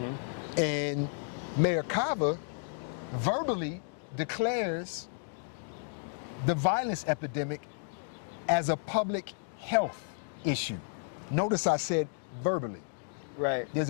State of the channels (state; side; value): silent; right; digital silence